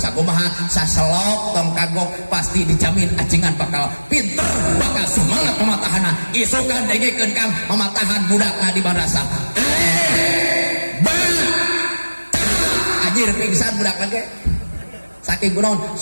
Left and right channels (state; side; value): inverted; both; correlation -1.00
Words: saselok tong kagok pasti dijamin ajengan bakal pinter bakal semangat pematahana isukan dengekeun kang mematahan budakna di madrasah anjir pingsan budakna ge saking kunaon